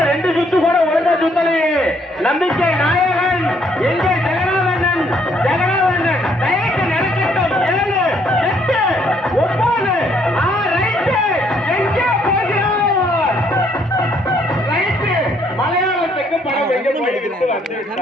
2 சுத்து கூட ஒழுங்கா சுத்தலையே. நம்பிக்கை நாயகன் எங்கே? ஜெகநாதன் ஜெகநாதன் ரைட் நடக்கட்டும். 7 8 9 ரைட் எங்கே போகிறார்? ரைட் மலையாளத்துக்கு படம் எங்க போயிட்டு வந்து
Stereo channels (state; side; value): normal; both; correlation 0.67